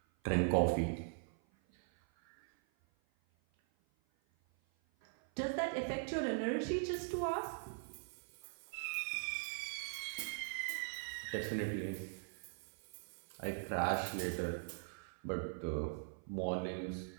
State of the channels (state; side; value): silent; left; 50 dB below the other